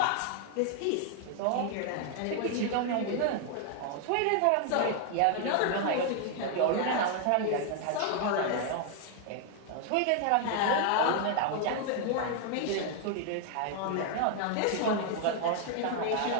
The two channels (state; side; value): different; both; correlation 0.00